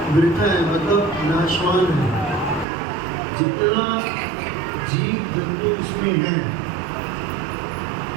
वृथा है, मतलब नाशवान है। जितना जीव जंतु इसमें है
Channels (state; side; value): drops out; left; at 2.7 s